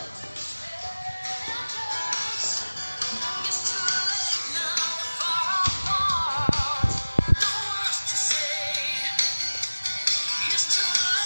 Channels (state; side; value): inverted; both; correlation -1.00